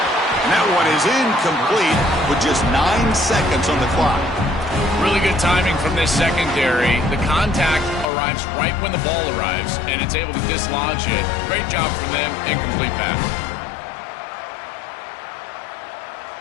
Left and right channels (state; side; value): drops out; right; at 8.1 s